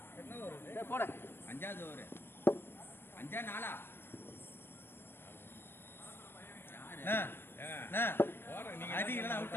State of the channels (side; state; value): right; late; 0.10 ms